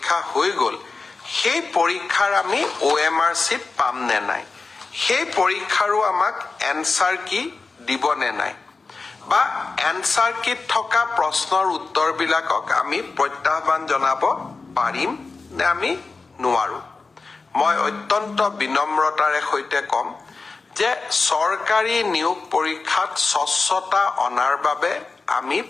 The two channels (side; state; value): right; quieter; 4.1 dB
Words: হৈ গ'ল সেই পৰীক্ষাৰ আমি OMR চিট পাম নে নাই সেই পৰীক্ষাৰো আমাক এনসাৰ কি দিব নে নাই বা এনসাৰ কিট থকা প্ৰশ্নৰ উত্তৰবিলাকক আমি প্ৰত্যাহ্বান জনাব পাৰিম নে আমি নোৱাৰো মই অত্যন্ত বিনম্ৰতাৰে সৈতে কম যে চৰকাৰী নিয়োগ পৰীক্ষাত স্বচ্ছতা অনাৰ বাবে আমি